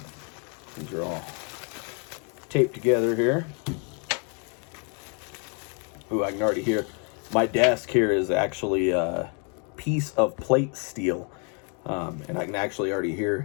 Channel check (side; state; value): right; quieter; 38.3 dB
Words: These are all taped together here. Ooh, I can already hear. My desk here is actually piece of plate steel, and I can actually already